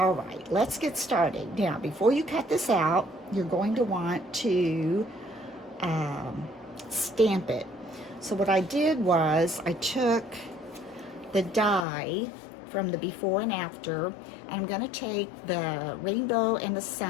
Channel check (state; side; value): drops out; right; at 11.9 s